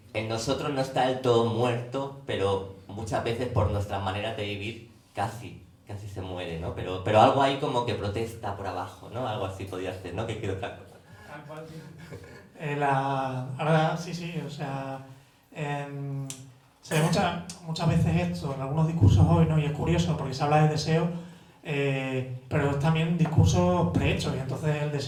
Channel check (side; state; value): both; identical; correlation 1.00